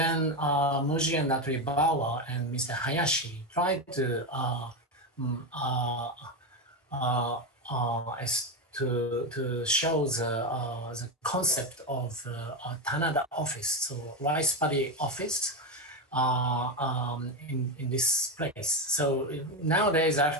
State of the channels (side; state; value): both; normal; correlation 0.13